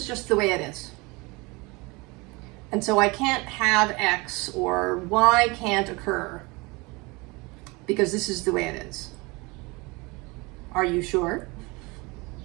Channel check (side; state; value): left; quieter; 25.5 dB